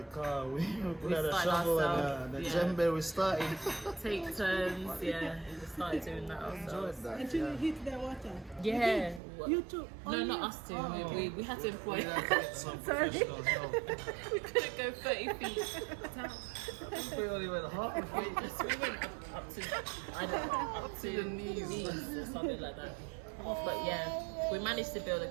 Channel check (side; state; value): left; drops out; at 9.2 s